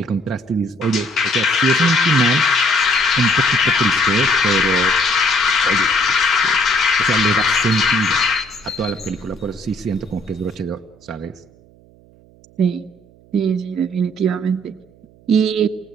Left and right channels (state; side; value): noise; right; hum, 28 dB below the sound